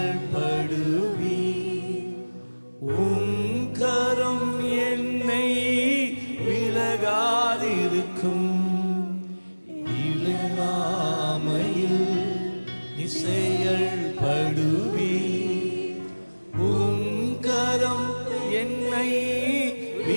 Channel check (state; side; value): inverted; both; correlation -1.00